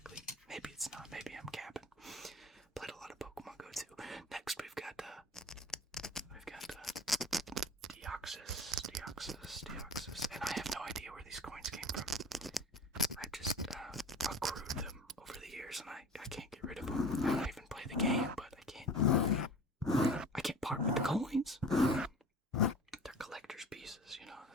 Maybe it's not. Maybe I'm capping. Played a lot of Pokemon Go too. Next we've got Deoxys, and I have no idea where these coins came from. I just accrued them over the years, and I can't get rid of them. I don't even play the game, but I can't part with the coins. They're collector's pieces, you know,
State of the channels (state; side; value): normal; both; correlation 0.40